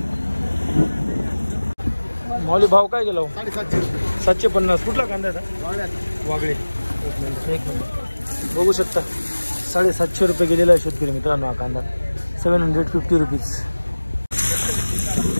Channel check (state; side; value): inverted; both; correlation -1.00